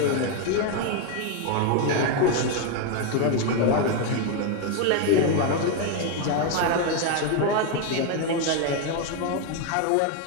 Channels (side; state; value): both; different; correlation 0.01